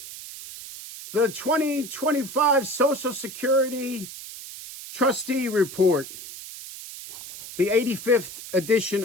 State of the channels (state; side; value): noise; right; hiss, 12 dB below the sound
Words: the 2025 Social Security Trustee Report, the 85th edition